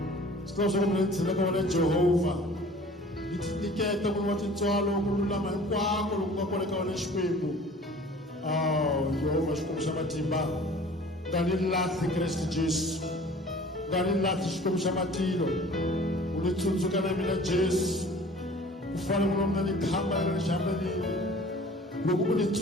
Swi swa ku mina ni tshela ka wena Jehova ni tinyiketa munhu wa tintswalo ku lulama hinkwako loku nga kona ka wena Xikwembu. Jehova Xikwembu xa matimba nga ni lahli Kreste Jesu, nga ni lahli Xikwembu xa matilo, u ni tsundzuka na mina Jesu ku fana munhu wa mina ni khamba leri xihambelile loko u ni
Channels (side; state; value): both; normal; correlation 0.47